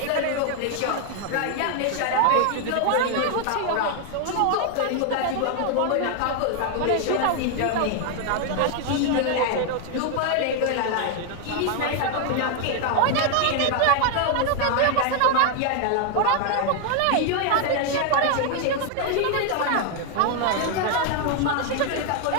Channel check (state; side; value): different; both; correlation 0.00